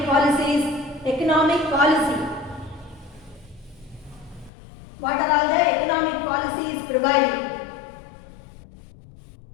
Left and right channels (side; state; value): right; drops out; at 4.5 s